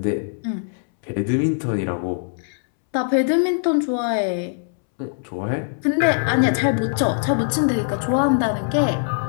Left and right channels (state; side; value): silent; right; 64 dB below the other